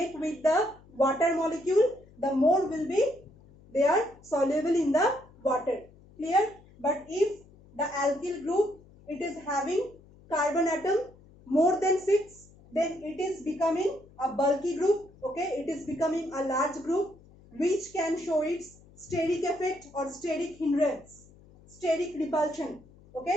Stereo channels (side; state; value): left; noise; hum, 25 dB below the sound